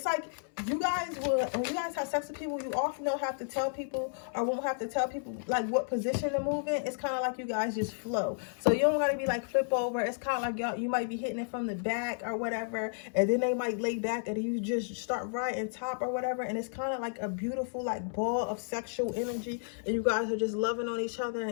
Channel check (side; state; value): right; silent; 56 dB below the other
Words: you guys when you guys have sex with people, you often don't have to tell people, or won't have to tell people like what position to move in. It's kind of like you guys just flow. So you don't gotta be like flip over. It's kind of like you might be hitting it from the back or whatever, and then they might lay back, and you just start right and top or whatever, and it's kind of like a beautiful like ball of sexual energy, and you guys are just loving on each other